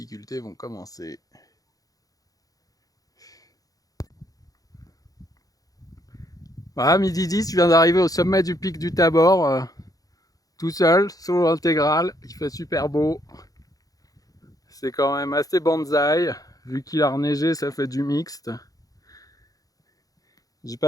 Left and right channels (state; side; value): late; right; 0.17 ms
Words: vont commencer. Voilà, midi 10, je viens d'arriver au sommet du pic du Tabor, tout seul, solo intégral, il fait super beau. C'est quand même assez bonsaï, vu qu'il a reneigé, ça fait du mixte. J'ai